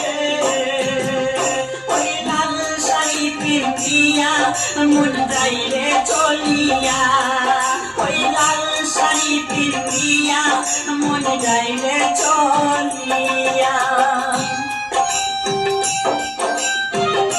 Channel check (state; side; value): identical; both; correlation 1.00